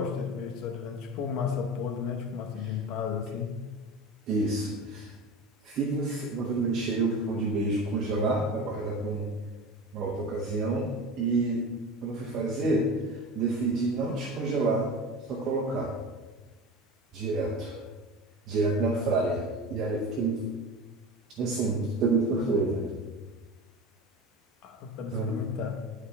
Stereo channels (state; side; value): normal; both; correlation 0.31